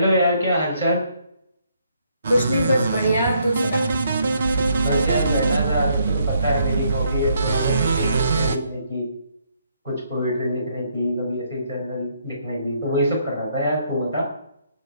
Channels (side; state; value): both; inverted; correlation -0.71